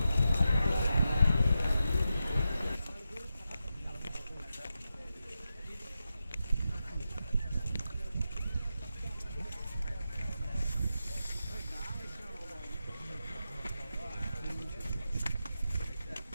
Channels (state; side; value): inverted; both; correlation -0.89